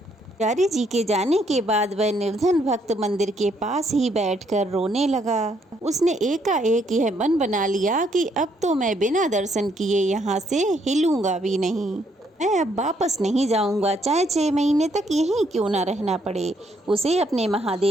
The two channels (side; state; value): both; normal; correlation 0.71